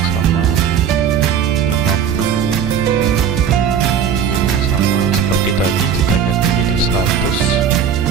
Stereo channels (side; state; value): left; quieter; 7.8 dB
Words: sama 50, width-nya sama seperti tadi, kita ganti jadi 100.